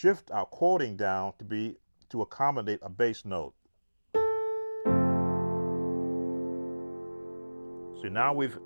our chording down to accommodate a bass note. So now we've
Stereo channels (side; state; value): both; inverted; correlation -1.00